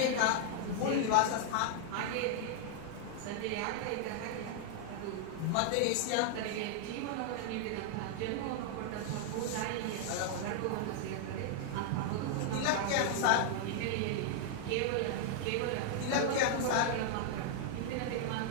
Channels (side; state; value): both; different; correlation 0.00